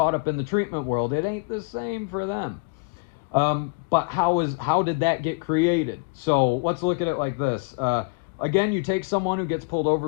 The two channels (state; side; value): quieter; right; 31.0 dB